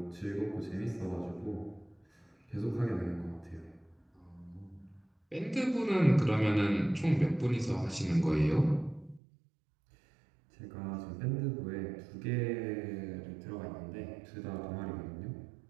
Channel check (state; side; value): drops out; left; at 9.2 s